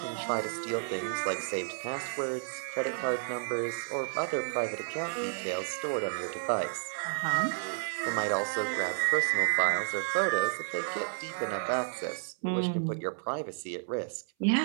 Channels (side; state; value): left; silent; 57 dB below the other